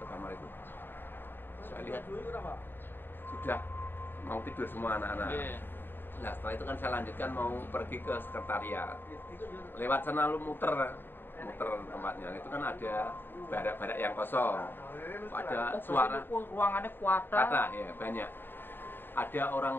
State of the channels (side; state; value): right; late; 0.097 ms